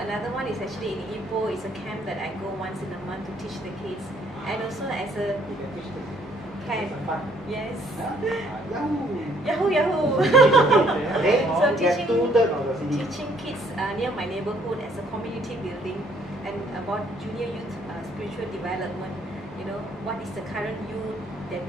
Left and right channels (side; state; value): both; normal; correlation 0.64